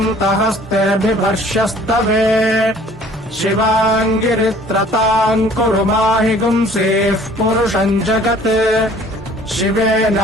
शिवाङ्गिरित्रताम् कुरु माहि गुंसेः पुरुषम् जगत् शिवेन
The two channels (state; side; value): normal; both; correlation 0.53